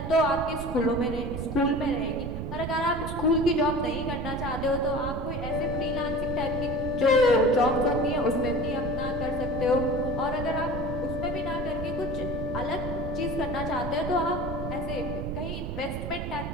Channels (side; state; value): right; noise; rumble, 5 dB below the sound